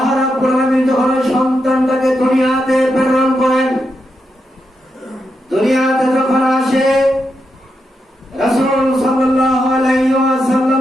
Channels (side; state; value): both; normal; correlation 0.85